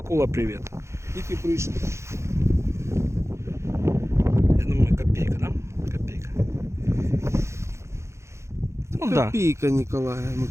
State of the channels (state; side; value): late; left; 0.14 ms